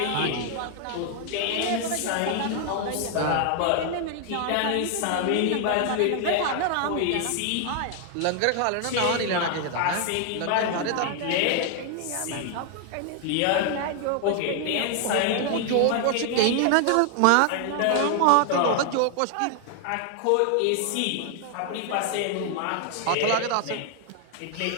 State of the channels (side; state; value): both; different; correlation 0.00